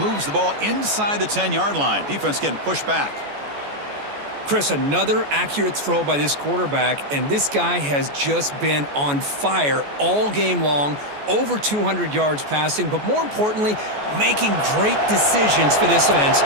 the ball inside the 10-yard line. Defense getting pushed back. Chris, another accurate throw by this quarterback, and this guy has just been on fire all game long, over 200 yards passing, but more importantly, making great decisions for this offense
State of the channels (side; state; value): left; late; 14 ms